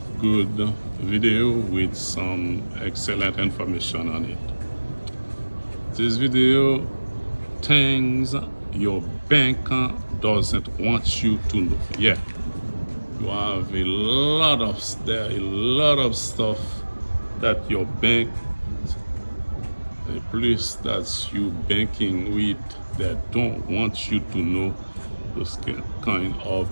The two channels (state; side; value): inverted; both; correlation -1.00